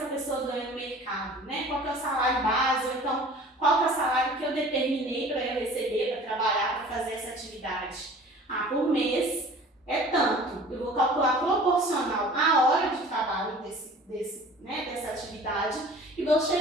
pessoa ganha no mercado? Né? Qual que é o salário base? Ou então, qual que é o salário que eu determinei para eu receber, para trabalhar, para fazer essa atividade? Por mês é tanto. Eu vou calcular proporcional à hora de trabalho dessa atividade e vou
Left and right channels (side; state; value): both; normal; correlation 0.45